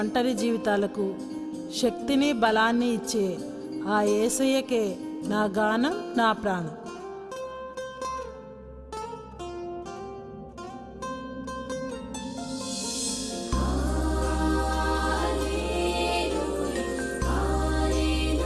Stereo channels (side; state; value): both; identical; correlation 1.00